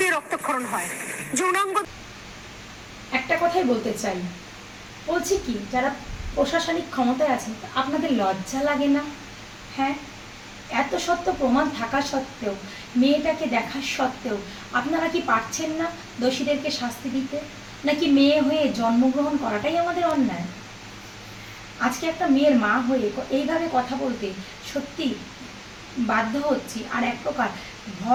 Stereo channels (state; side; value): identical; both; correlation 1.00